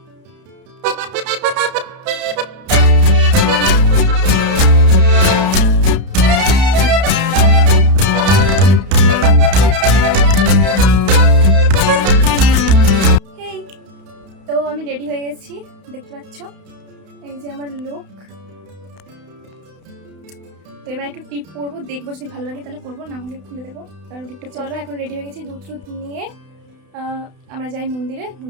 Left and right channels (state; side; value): late; left; 32 ms